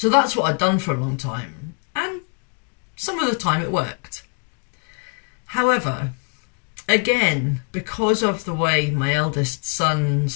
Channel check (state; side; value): quieter; right; 37.6 dB